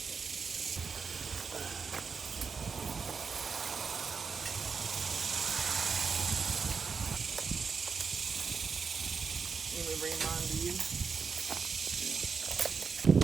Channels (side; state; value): left; quieter; 5.5 dB